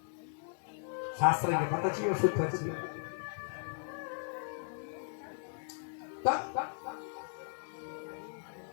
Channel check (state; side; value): silent; right; digital silence